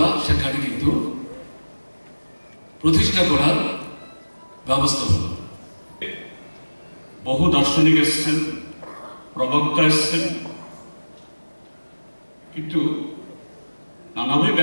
সেখানে কিন্তু প্রতিষ্ঠা করার ব্যবস্থা হল। বহু দার্শনিক এসছেন, প্রবক্তা এসছেন, কিন্তু নানাভাবে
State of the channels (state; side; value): inverted; both; correlation -1.00